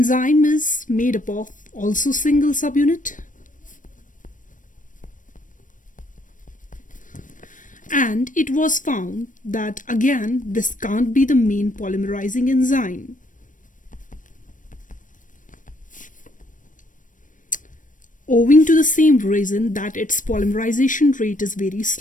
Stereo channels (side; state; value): right; late; 0.38 ms